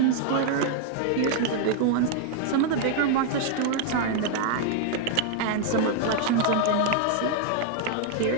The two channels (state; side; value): different; both; correlation 0.00